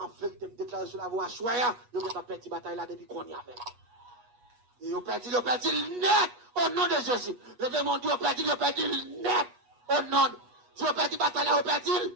vérité, me déclare sur la voie soya, yo avez perdu bataille là depuis qu'on y avait. Et vous perdu net au nom de Jésus. Levez mon Dieu, vous perdu net au nom de Dieu. Vous perdu bataille là, vous perdu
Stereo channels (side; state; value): left; late; 8.3 ms